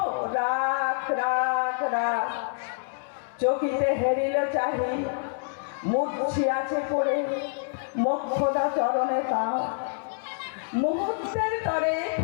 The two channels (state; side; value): silent; right; 60 dB below the other